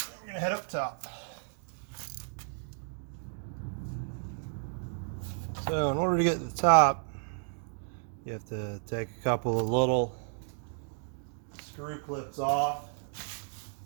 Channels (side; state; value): left; silent; 56 dB below the other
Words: we're gonna head up top. So in order to get to the top, you have to take a couple of little screw clips off.